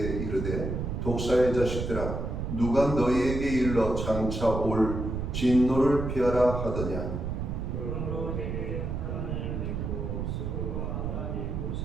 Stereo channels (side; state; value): right; noise; rumble, 3 dB below the sound